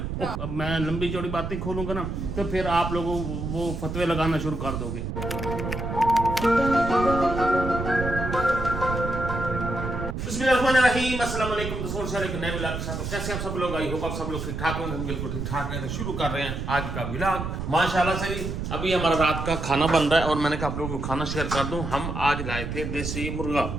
अब मैं लंबी चौड़ी बातें खोलूंगा ना तो फिर आप लोगों वो फतवे लगाना शुरू कर दोगे। अस्सलाम वालेकुम दोस्तों, एक नए व्लॉग के साथ। तो कैसे आप सब लोग, आई होप आप सब लोग ठीक ठाक होंगे। हम बिल्कुल ठीक ठाक हैं। तो शुरू कर रहे हैं आज का व्लॉग माशाल्लाह से। अभी हमारा रात का खाना बन रहा है और मैंने कहा आप लोगों को खाना शेयर कर दूं। हम आज लाए थे देसी मुर्गा।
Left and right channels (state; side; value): noise; right; rumble, 4 dB below the sound